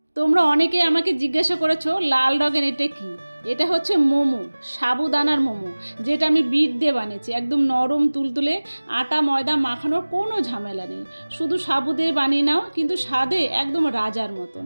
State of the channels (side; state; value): both; inverted; correlation -1.00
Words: তোমরা অনেকেই আমাকে জিজ্ঞাসা করেছো লাল রঙের এটা কি। এটা হচ্ছে মোমো, সাবুদানার মোমো, যেটা আমি বিট দিয়ে বানিয়েছি। একদম নরম তুলতুলে, আটা ময়দা মাখানোর কোনো ঝামেলা নেই। শুধু সাবু দিয়ে বানিয়ে নাও, কিন্তু স্বাদে একদম রাজার মতন।